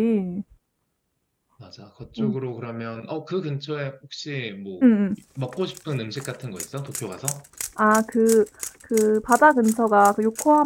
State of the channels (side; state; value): both; identical; correlation 1.00